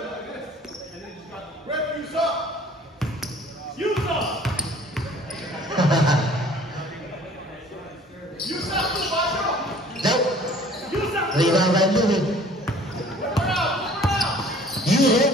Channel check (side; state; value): both; normal; correlation 0.51